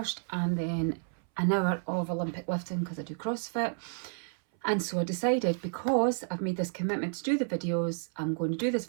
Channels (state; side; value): silent; left; 57 dB below the other